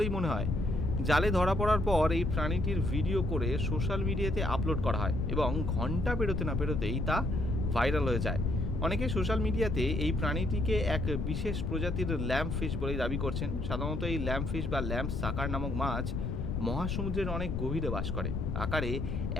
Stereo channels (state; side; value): noise; left; rumble, 2 dB below the sound